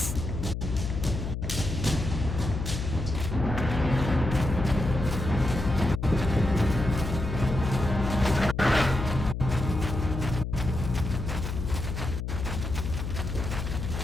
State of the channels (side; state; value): left; noise; hum, 4 dB below the sound